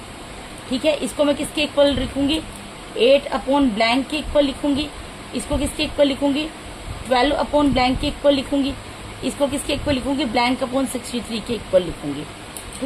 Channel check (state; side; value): identical; both; correlation 1.00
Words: ठीक है। इसको मैं किसके इक्वल लिखूंगी, 8 अपॉन ब्लैंक के इक्वल लिखूंगी। इसको किसके इक्वल लिखूंगी, 12 अपॉन ब्लैंक के इक्वल लिखूंगी। इसको किसके इक्वल लिखूंगी, ब्लैंक अपॉन 63 के इक्वल लिखूंगी,